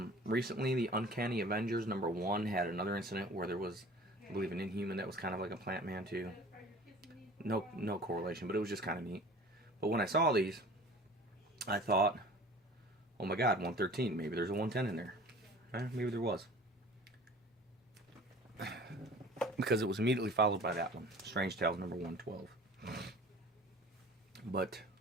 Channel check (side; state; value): both; normal; correlation 0.44